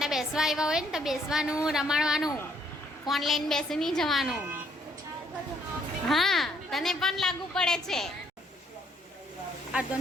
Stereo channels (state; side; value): normal; both; correlation 0.68